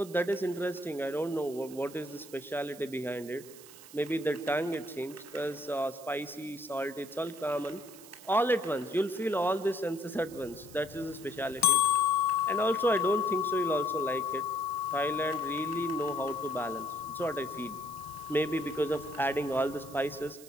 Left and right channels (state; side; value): noise; right; hiss, 18 dB below the sound